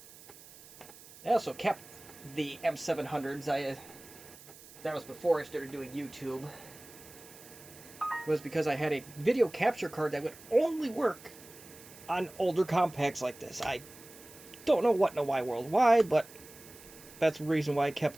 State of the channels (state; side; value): noise; right; hiss, 20 dB below the sound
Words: I also kept the M700s. That was before I started doing YouTube. It was because I had a video capture card that would only work on older Compaqs like this. I don't know what in the wide world why, but that's the reason why I